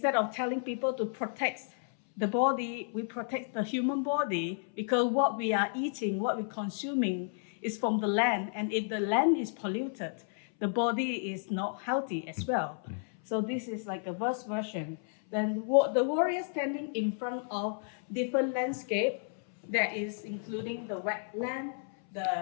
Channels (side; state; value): right; silent; 56 dB below the other